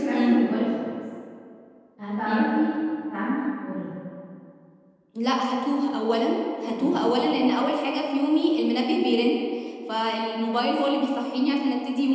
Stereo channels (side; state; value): both; identical; correlation 1.00